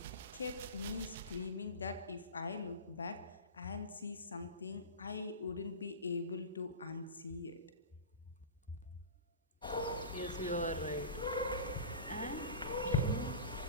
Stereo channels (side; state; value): both; inverted; correlation -0.31